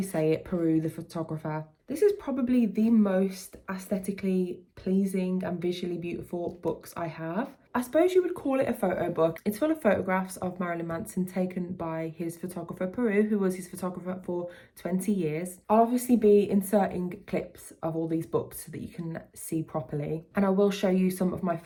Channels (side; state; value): both; identical; correlation 1.00